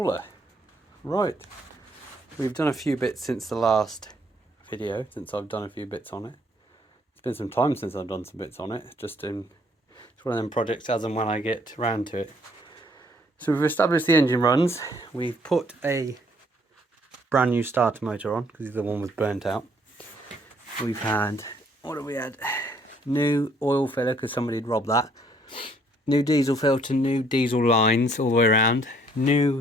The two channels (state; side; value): normal; both; correlation 0.65